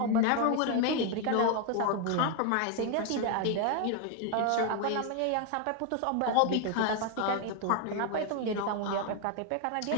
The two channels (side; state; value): both; different; correlation 0.01